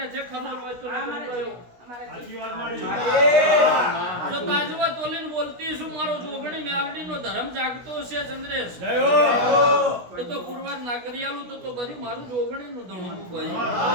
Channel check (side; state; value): left; late; 16 ms